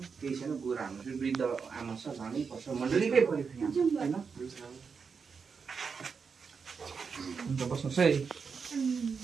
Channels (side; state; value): left; quieter; 5.7 dB